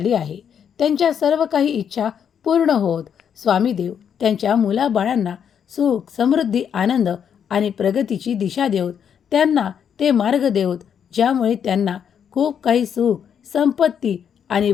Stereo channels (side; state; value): right; quieter; 8.1 dB